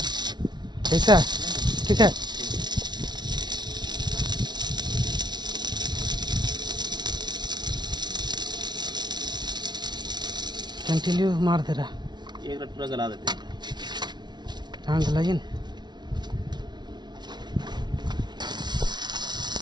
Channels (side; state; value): left; late; 0.20 ms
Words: ऐसा ठीक है। कंटिन्यू मार दे रहा। एक रट पूरा गला देते हैं। हाँ गलाइए ना।